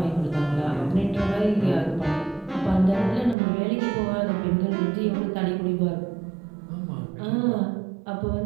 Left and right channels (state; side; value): drops out; left; at 3.4 s